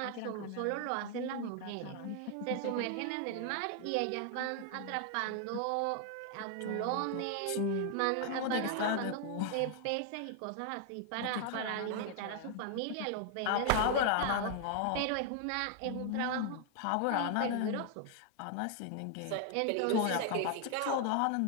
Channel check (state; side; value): different; both; correlation 0.00